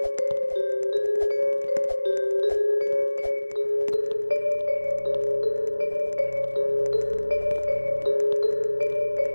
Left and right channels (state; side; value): inverted; both; correlation -1.00